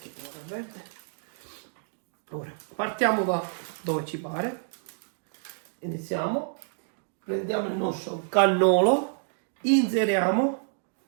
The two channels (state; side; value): silent; left; digital silence